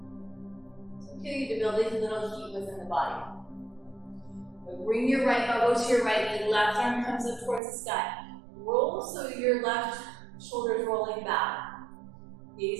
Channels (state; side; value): drops out; left; at 7.6 s